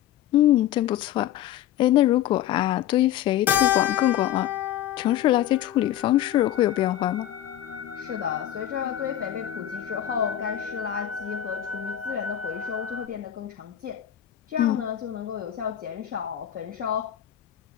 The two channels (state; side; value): quieter; right; 11.8 dB